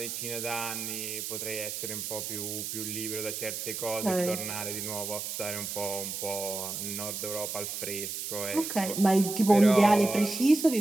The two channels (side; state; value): right; noise; hiss, 5 dB below the sound